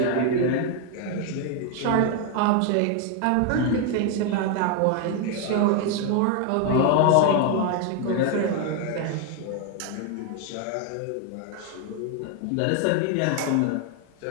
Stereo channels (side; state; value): both; different; correlation 0.01